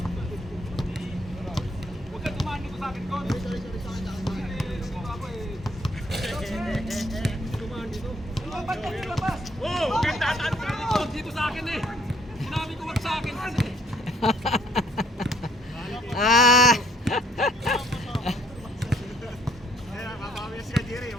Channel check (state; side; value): normal; both; correlation 0.64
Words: Huwag ka tumano ko sa akin, Kon. Ba't ka nilabas? Oo, huwag kang tataan ka dito sa akin eh. Sinabi ko wag sa akin kasi. Ah!